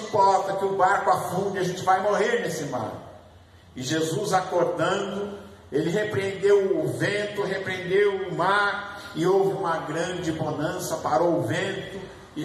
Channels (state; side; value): identical; both; correlation 1.00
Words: que o barco afunde, a gente vai morrer nesse mar. E Jesus, acordando, ele repreendeu o vento, repreendeu o mar, e houve uma grande bonança, parou o vento